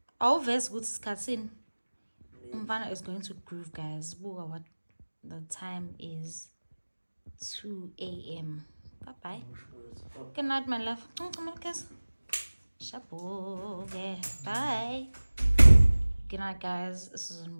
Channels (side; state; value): both; inverted; correlation -1.00